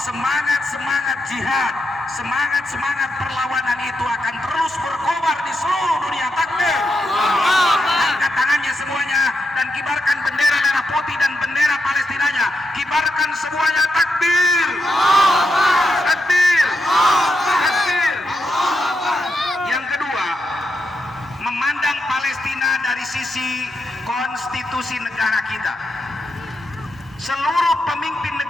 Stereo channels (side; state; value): both; normal; correlation 0.84